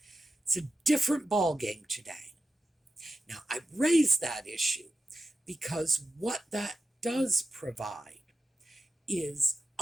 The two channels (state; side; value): normal; both; correlation 0.91